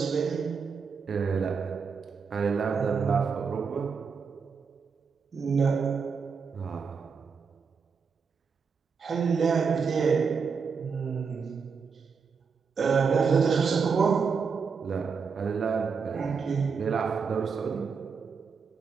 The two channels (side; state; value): left; quieter; 5.6 dB